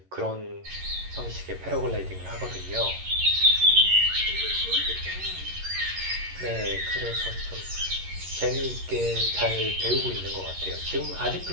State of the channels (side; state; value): left; late; 11 ms